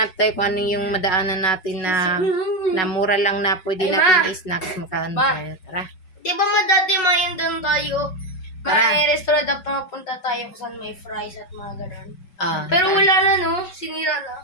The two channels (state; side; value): late; right; 5.4 ms